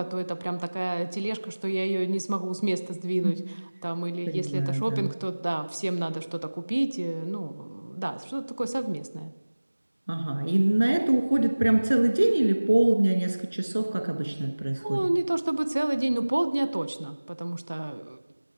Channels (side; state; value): both; inverted; correlation -1.00